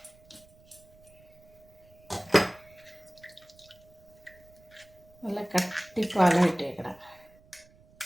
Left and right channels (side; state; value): right; noise; rumble, 27 dB below the sound